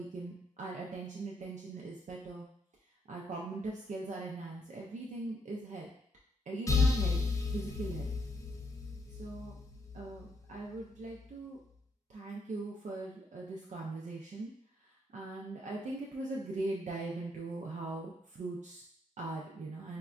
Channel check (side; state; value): both; normal; correlation 0.74